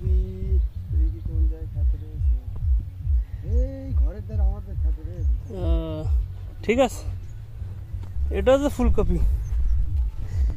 ঠিক আছে, এটা হচ্ছে ফুলকপি।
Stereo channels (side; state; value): both; identical; correlation 1.00